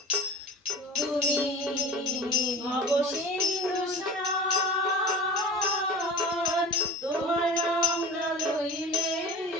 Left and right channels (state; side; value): normal; both; correlation 0.38